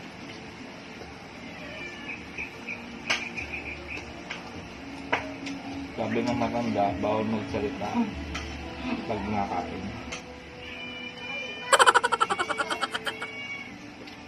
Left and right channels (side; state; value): both; identical; correlation 1.00